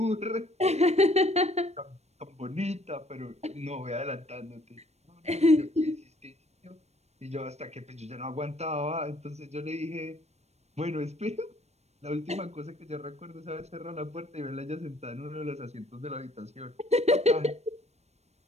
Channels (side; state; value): left; late; 0.31 ms